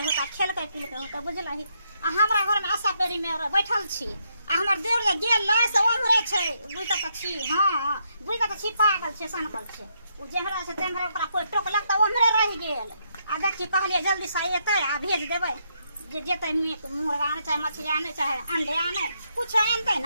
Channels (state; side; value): inverted; both; correlation -0.77